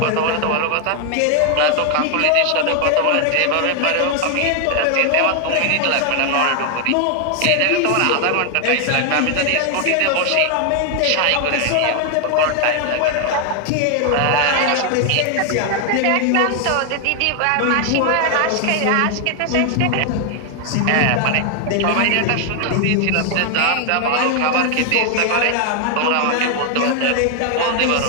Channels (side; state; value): both; different; correlation 0.00